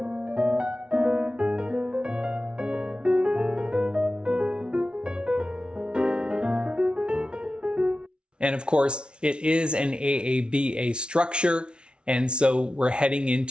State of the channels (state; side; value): late; left; 0.057 ms